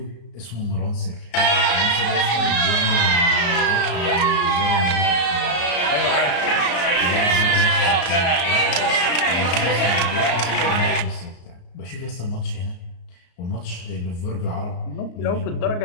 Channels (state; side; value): late; right; 34 ms